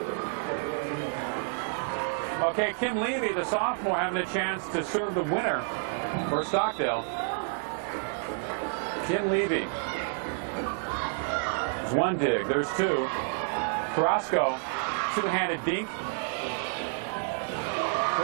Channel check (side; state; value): left; silent; 58 dB below the other